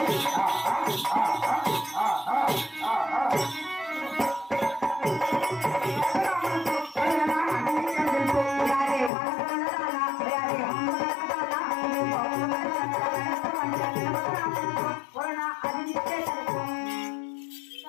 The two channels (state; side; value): drops out; right; at 9.1 s